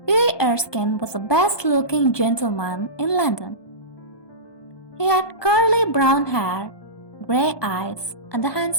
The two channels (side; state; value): right; late; 1.2 ms